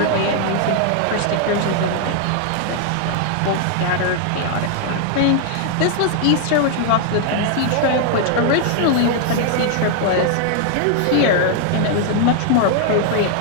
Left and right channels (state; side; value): different; both; correlation 0.00